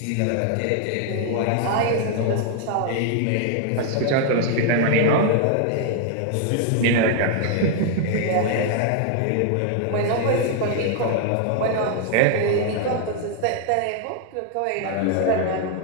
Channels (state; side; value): different; both; correlation 0.00